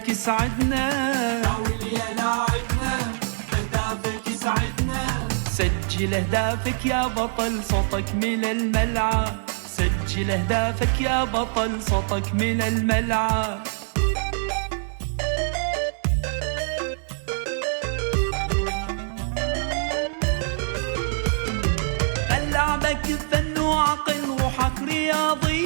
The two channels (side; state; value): left; silent; digital silence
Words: يسعدنا، ناول يا لاعبنا بهدافك يسعدنا. سجل اهدافك يا بطل صوتك من الملعب، سجل اهدافك يا بطل صوتك من الملعب. لعبك فن وعقل روحك